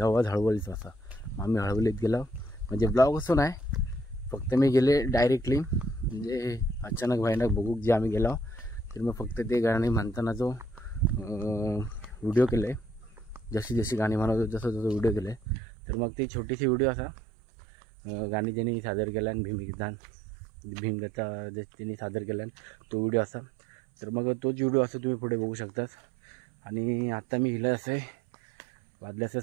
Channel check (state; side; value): drops out; left; at 15.6 s